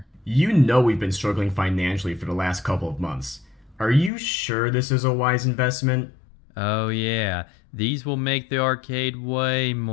You know we've been struggling financially for the last couple of months. Are you sure this is a wise investment? Oh, yeah, these will make the arcade way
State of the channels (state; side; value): drops out; right; at 4.1 s